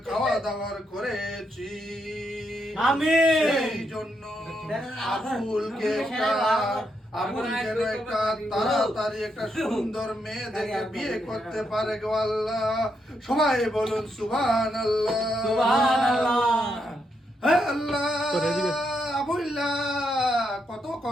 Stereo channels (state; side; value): normal; both; correlation 0.80